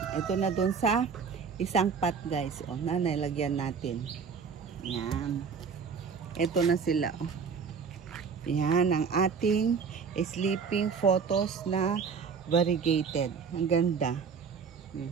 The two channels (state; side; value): quieter; left; 5.9 dB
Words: Ito na doon sa isang pot, guys. O, nalagyan natin. Yan. Ito na sila. O. Yan ang ating sleeping photos na variegated. Ang ganda.